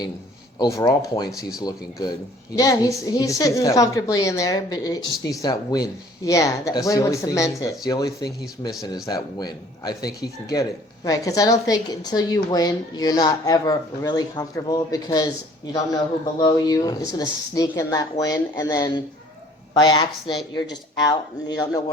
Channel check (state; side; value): normal; both; correlation 0.55